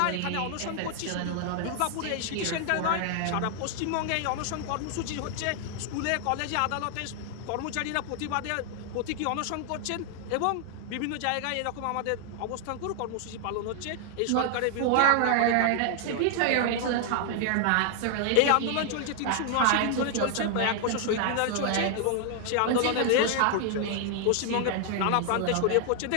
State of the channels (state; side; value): different; both; correlation 0.00